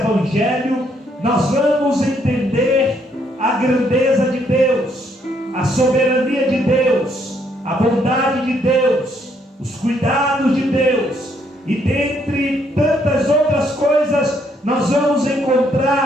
nós vamos entender a grandeza de Deus, a soberania de Deus, a bondade de Deus, os cuidados de Deus, e dentre tantas outras coisas, nós vamos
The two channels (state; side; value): normal; both; correlation 0.71